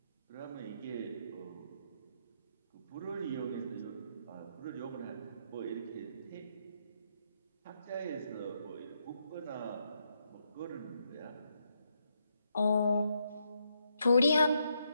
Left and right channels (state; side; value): inverted; both; correlation -0.79